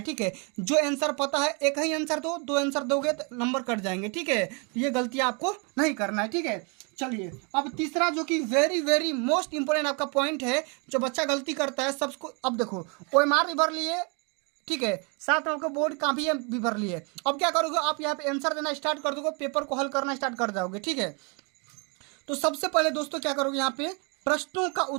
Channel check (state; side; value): quieter; left; 34.0 dB